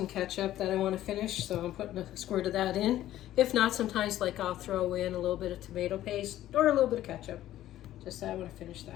ketchup that I want to finish, so I'm putting a squirt of that in. If not, sometimes like I'll throw in a little bit of tomato paste or a little bit of ketchup. Just I want to finish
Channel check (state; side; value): quieter; right; 13.5 dB